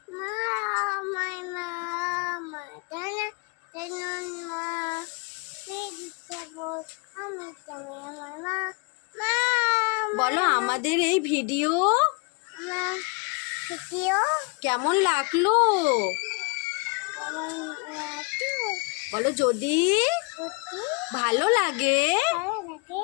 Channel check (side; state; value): right; quieter; 32.3 dB